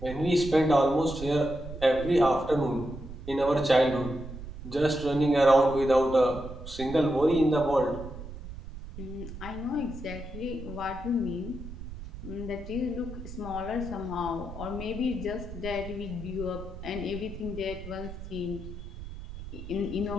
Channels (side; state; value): right; noise; rumble, 11 dB below the sound